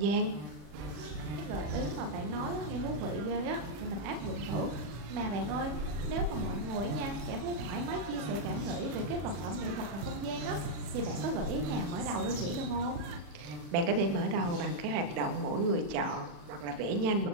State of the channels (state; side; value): late; left; 41 ms